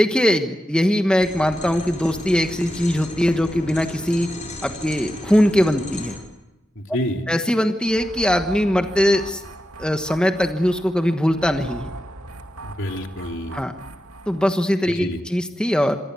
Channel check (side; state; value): both; normal; correlation 0.89